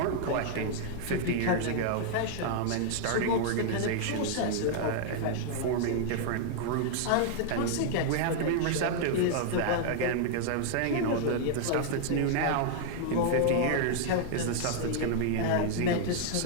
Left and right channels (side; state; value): both; different; correlation -0.01